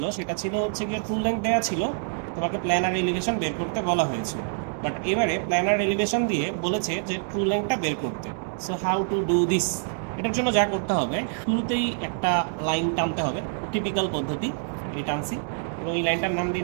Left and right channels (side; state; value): left; silent; digital silence